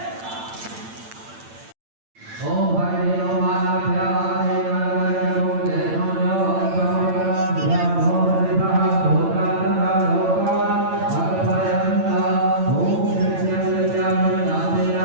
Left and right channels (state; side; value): late; left; 8.8 ms